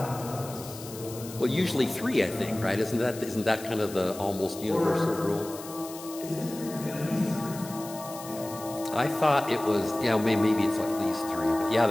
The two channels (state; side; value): noise; left; hiss, 14 dB below the sound